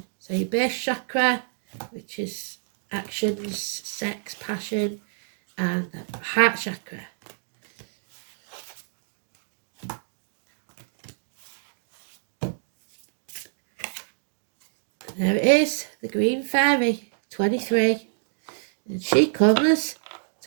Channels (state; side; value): silent; left; digital silence